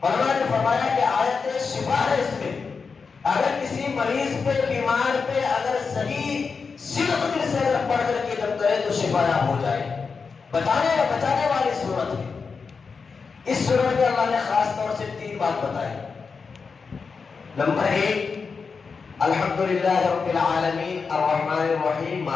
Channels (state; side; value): quieter; right; 5.1 dB